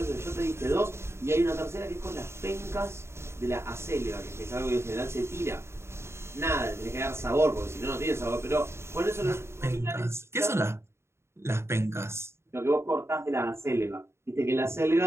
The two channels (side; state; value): left; late; 0.13 ms